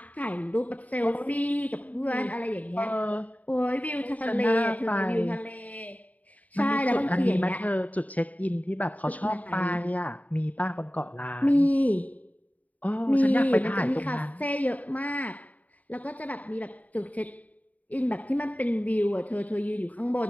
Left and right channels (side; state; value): right; late; 0.073 ms